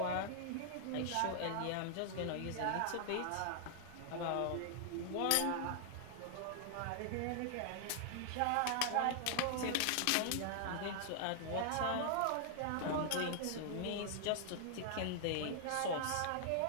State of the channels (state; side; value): different; both; correlation -0.01